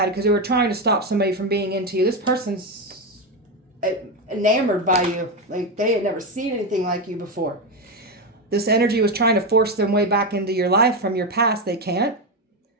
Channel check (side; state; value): both; normal; correlation 0.11